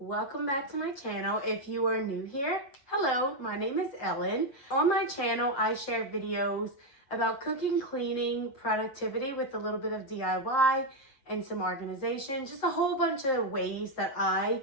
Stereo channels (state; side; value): late; right; 7.7 ms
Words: back to my channel. If you are new here, hello, my name is Ellen. On my channel, I share videos about cooking, cleaning, productivity with a little bit of DIY and some organization, just a whole bunch of ways that I